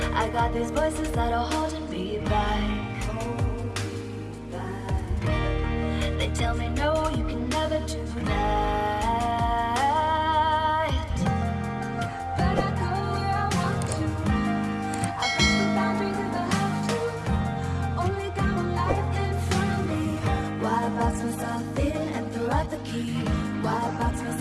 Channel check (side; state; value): both; identical; correlation 1.00